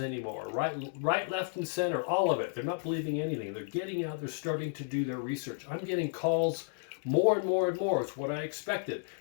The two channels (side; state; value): right; silent; digital silence